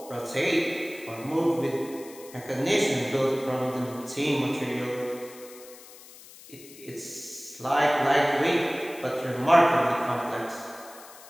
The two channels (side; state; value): left; noise; hiss, 19 dB below the sound